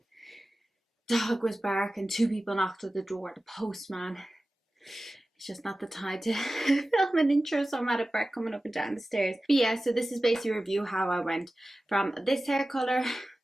Dog was barking, 2 people knocked at the door, the postman. It's just not the time to film an intro, so I'm out of breath coming up and down the stairs. But yeah, so this is basically a review how I went from this hair color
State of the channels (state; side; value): normal; both; correlation 0.95